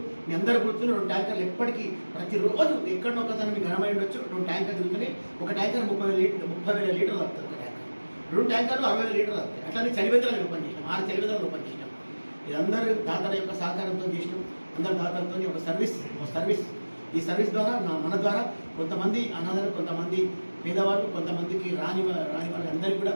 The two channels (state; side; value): inverted; both; correlation -1.00